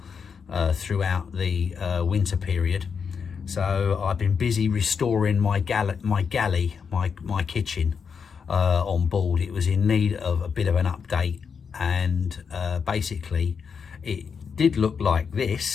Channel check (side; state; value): right; quieter; 6.2 dB